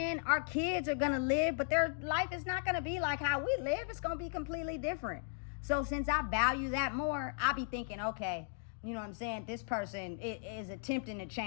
Our kids are going to live, but their life is not going to be like how we live. It's going to be completely different. So since I value that more, I'll be thinking, okay, you know what I'm saying, this person is attempting to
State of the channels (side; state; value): right; silent; digital silence